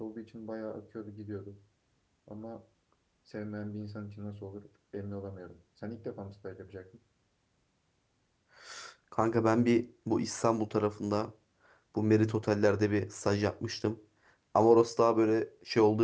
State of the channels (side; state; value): both; identical; correlation 1.00